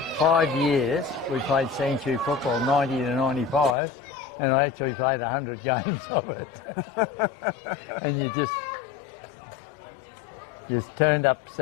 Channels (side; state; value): right; drops out; at 3.8 s